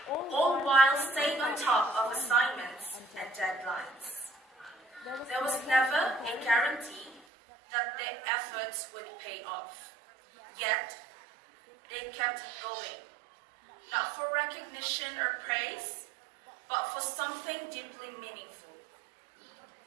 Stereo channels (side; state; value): left; drops out; at 7.2 s